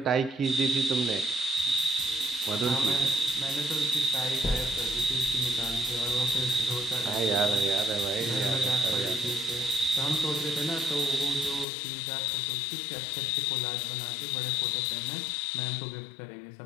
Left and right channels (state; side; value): drops out; right; at 11.7 s